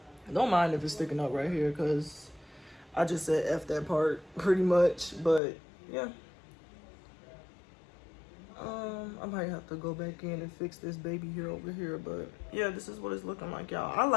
mind if it's sticking up right here, because I just said F that part pretty much. But yeah, I might have to go back in and fix this baby hair over here. But yeah, this is what it's looking like, y'all. I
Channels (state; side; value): drops out; right; at 5.4 s